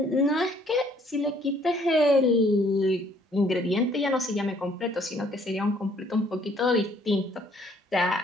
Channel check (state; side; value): normal; both; correlation 0.62